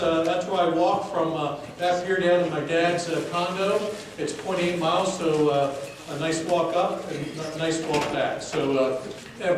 I walk from that pier down to my dad's condo. It's 0.8 miles, so a nice walk up and a nice walk back. So, and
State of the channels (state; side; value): identical; both; correlation 1.00